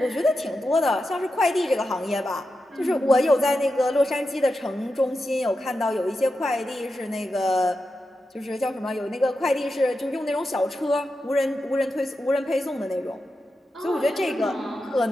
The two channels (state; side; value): normal; both; correlation 0.89